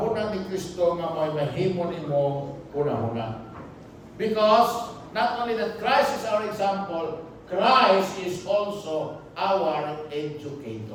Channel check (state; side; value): identical; both; correlation 1.00